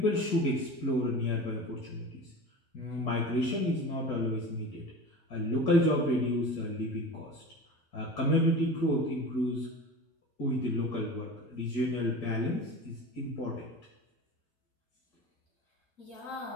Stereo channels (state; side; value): normal; both; correlation 0.33